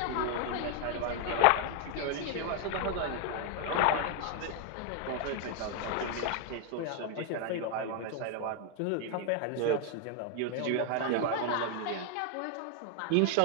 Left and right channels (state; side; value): different; both; correlation 0.00